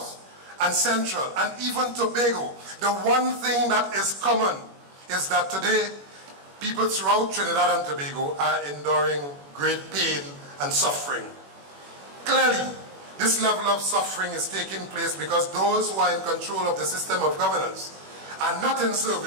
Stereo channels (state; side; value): late; left; 21 ms